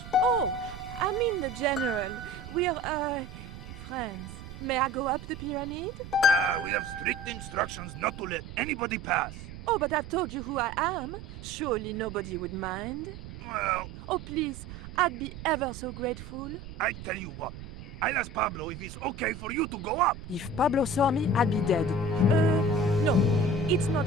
Oh, I mean the General. We're, friends. May I go up the pyramid? We have strict instructions not to let anybody pass. Oh, but I've told you who I am. Surely nobody would mind. Well, Oh, please, I'd be ever so grateful. I tell you what. I'll ask Pablo if it's okay for you to go up. If Pablo saw me, I'd be dead. No, it's not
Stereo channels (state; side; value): noise; right; rumble, 12 dB below the sound